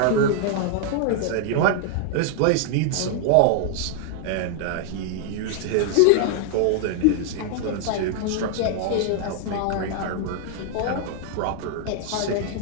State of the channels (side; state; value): both; different; correlation 0.00